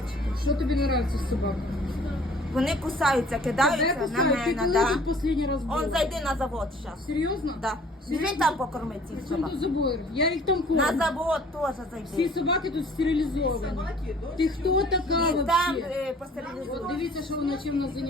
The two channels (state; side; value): normal; both; correlation 0.53